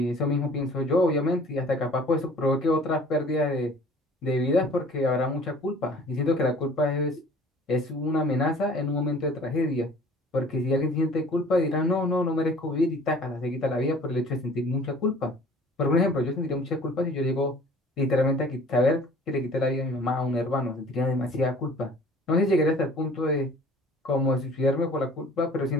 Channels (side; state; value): both; normal; correlation 0.49